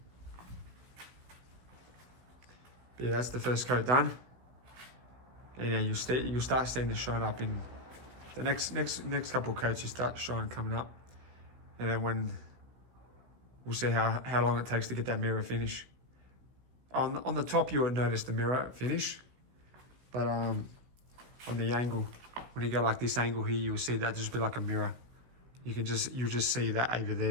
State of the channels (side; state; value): left; late; 16 ms